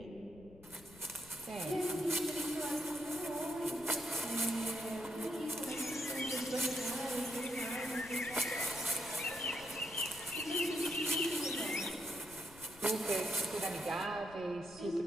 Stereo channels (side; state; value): left; noise; rumble, 20 dB below the sound